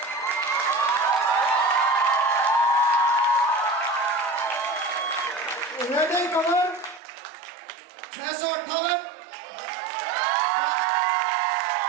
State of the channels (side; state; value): left; drops out; at 7.0 s